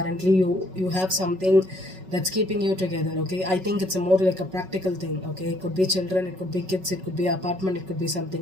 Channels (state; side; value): late; left; 5.4 ms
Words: you have something that's keeping you together, okay. I think it's more like a practical thing, okay. It could be children, it could be kids, it could be apartment, it could be